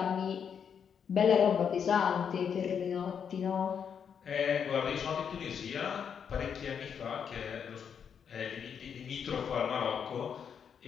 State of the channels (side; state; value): right; quieter; 7.4 dB